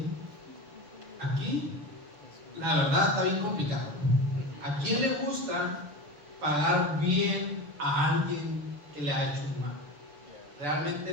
Aquí, la verdad, está bien complicado. ¿A quién le gusta pagar bien a alguien que le ha hecho un mal?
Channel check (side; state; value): left; late; 6.6 ms